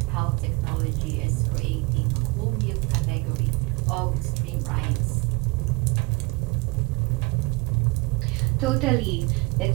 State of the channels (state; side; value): quieter; left; 25.7 dB